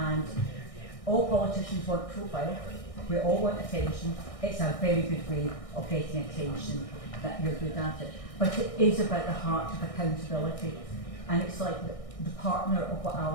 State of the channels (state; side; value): late; right; 1.6 ms